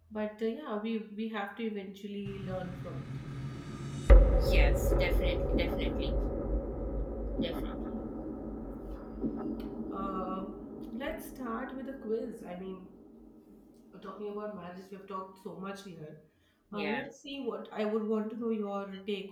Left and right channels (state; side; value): identical; both; correlation 1.00